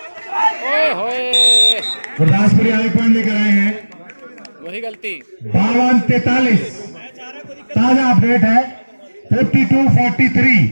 Gurdaspuri आगे पॉइंट लेकर आए हैं। वही गलती। 52-43 ताजा अपडेट है। 52-43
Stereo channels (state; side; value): inverted; both; correlation -1.00